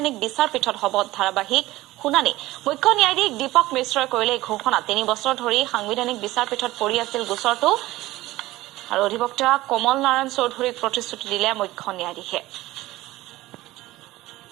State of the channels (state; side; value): quieter; left; 17.5 dB